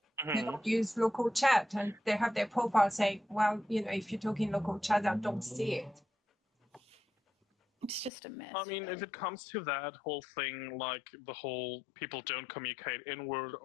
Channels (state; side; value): drops out; right; at 8.1 s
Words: they don't use local chat, and they have their profile saying, well, if you're talking local chat, I don't see it. It's just a mess. I mean, if it comes to that whole thing, like the whole people don't communicate inward,